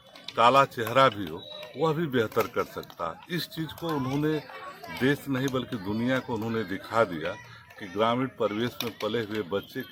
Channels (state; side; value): identical; both; correlation 1.00